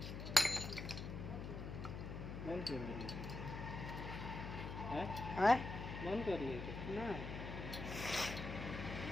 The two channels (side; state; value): left; noise; hum, 6 dB below the sound